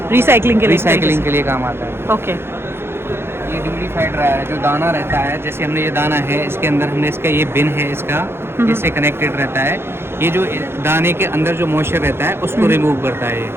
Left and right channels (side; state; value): left; late; 0.11 ms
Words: Recycling के लिए. रिसाइकलिंग के लिए काम आता है। Okay. ये ड्यूरीफाइड ड्रायर है, जो दाना रहता है, जैसे हमने ये दाना है, इसके अंदर हमने इसका ये बिन है, इसका इससे कनेक्टेड रहता है। ये जो दाने के अंदर जो मॉइस्चर रहता है, उसको रिमूव करता है ये।